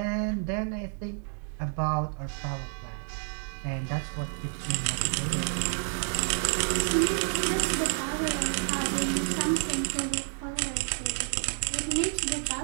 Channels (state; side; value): silent; left; 58 dB below the other